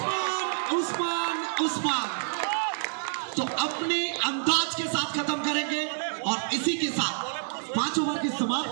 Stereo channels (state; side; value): silent; left; digital silence